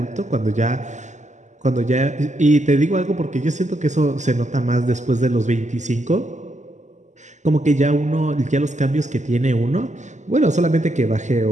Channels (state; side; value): late; left; 0.34 ms